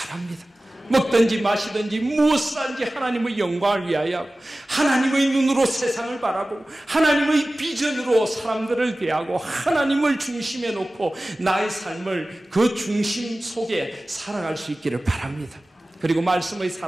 먹든지 마시든지 무엇을 하든지 하나님의 영광을 위하여 하나님의 눈으로 세상을 바라보고 하나님의 비전으로 사람들을 대하고 하나님을 중심에 놓고 나의 삶을 그 중심 속에 살아갈 수 있기를 바랍니다. 그리고 말씀의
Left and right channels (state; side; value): normal; both; correlation 0.97